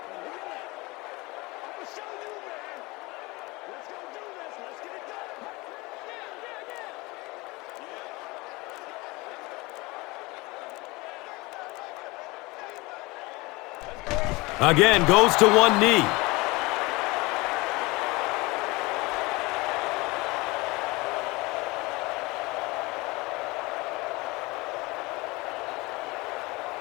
Again, goes to one knee.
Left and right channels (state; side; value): quieter; right; 23.4 dB